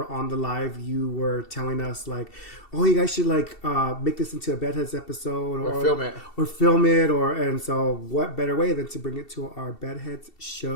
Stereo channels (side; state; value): right; late; 2.7 ms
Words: on the live, you were telling us like, oh, you guys should make this into a Bedheads episode or film it. And so what better way than to bring it to our Bedheads